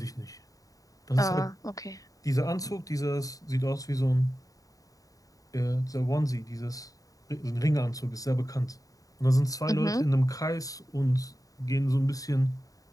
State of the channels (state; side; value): late; right; 0.17 ms